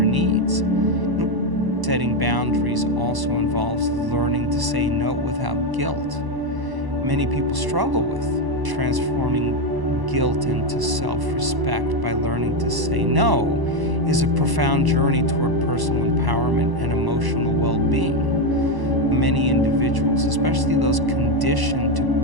needs. Setting boundaries also involves learning to say no without guilt. Many people struggle with transforming guilt into self-respect by learning to say no is a profound journey toward personal empowerment and emotional well-being. Many individuals, especially those conditioned to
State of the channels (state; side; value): late; left; 1.0 ms